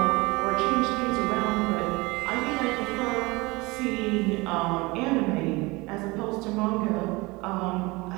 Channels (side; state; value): left; quieter; 23.9 dB